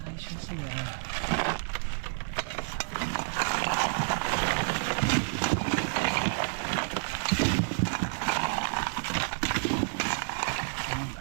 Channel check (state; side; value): silent; left; digital silence